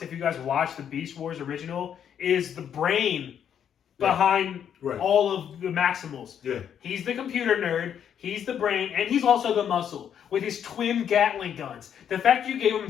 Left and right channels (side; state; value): right; quieter; 8.8 dB